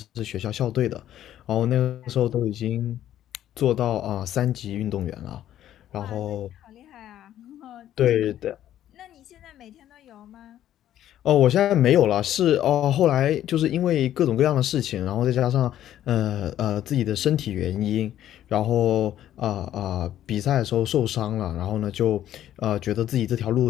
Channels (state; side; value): quieter; right; 11.9 dB